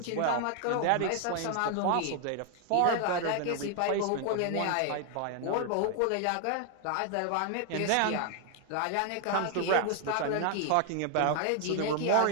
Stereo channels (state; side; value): different; both; correlation 0.00